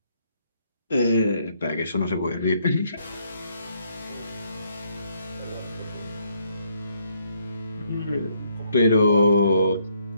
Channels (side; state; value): both; inverted; correlation -0.72